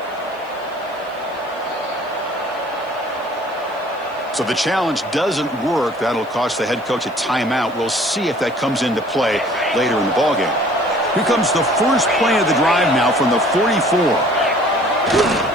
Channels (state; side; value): noise; left; hiss, 30 dB below the sound